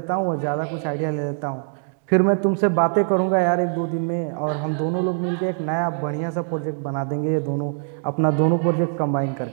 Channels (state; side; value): silent; left; digital silence